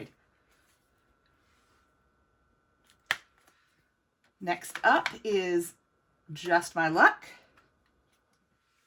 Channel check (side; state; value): both; identical; correlation 1.00